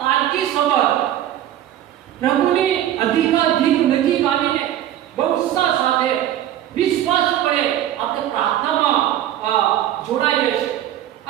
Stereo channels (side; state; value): left; quieter; 12.1 dB